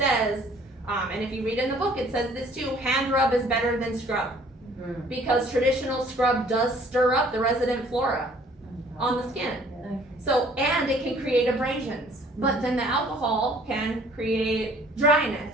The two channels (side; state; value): both; normal; correlation 0.57